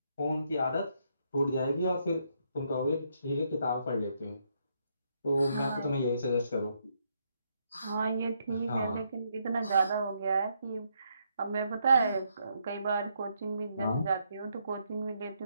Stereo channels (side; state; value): both; inverted; correlation -0.76